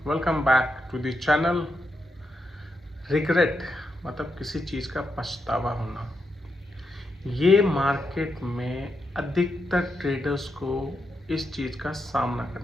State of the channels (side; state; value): both; normal; correlation 0.83